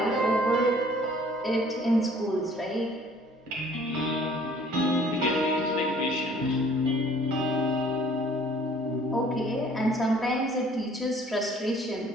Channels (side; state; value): both; normal; correlation 0.55